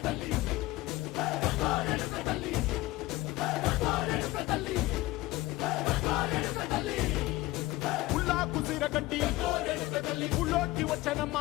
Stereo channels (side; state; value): right; quieter; 18.8 dB